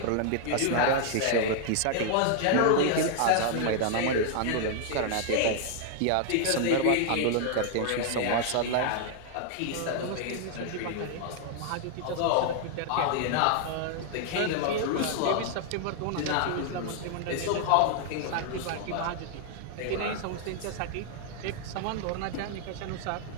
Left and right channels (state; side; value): different; both; correlation 0.00